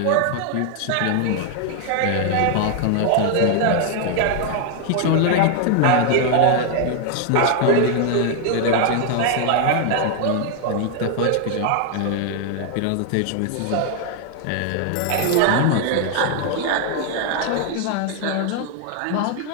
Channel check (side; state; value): both; different; correlation 0.00